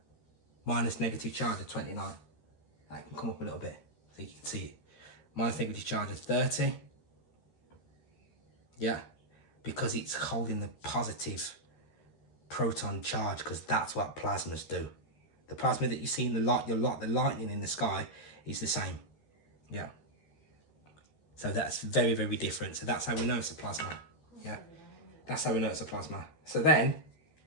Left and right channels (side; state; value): right; late; 12 ms